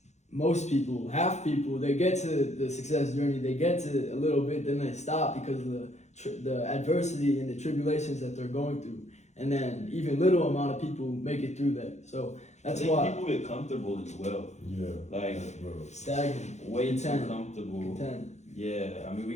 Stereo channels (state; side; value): late; right; 0.33 ms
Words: most people, half people, they get to the success journey, they get to a little bit, then they stop because of the adversity and the tribulations that they're going through. And then even little amount of people make it through that. So that's why people get comfortable as well. Yeah. Like stagnant. Way too comfortable. Content. Yeah, we